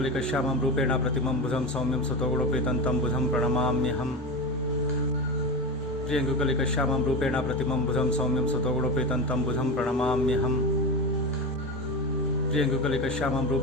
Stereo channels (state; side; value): normal; both; correlation 0.22